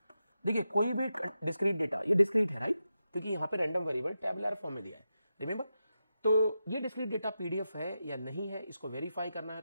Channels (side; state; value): both; inverted; correlation -0.89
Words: देखिए कोई भी डिस्क्रीट डेटा, ये डिस्क्रीट है, राइट, क्योंकि यहाँ पे रैंडम वेरिएबल टेबुलर फॉर्म में दिया है, रिमेंबर। तो ये डिस्क्रीट डेटा पीडीएफ है या नहीं है इसको वेरीफाई करना है